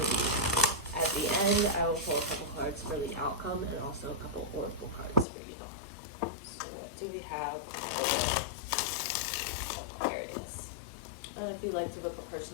At the end, I will pull a couple cards for the outcome and also a couple oracle cards for you. So what do we have for Aquarius? And if you'd like to book a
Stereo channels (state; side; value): drops out; right; at 5.2 s